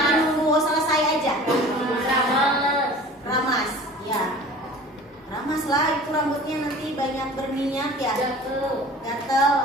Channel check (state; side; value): normal; both; correlation 0.43